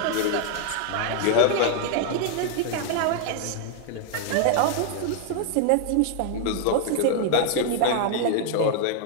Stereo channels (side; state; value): both; different; correlation 0.00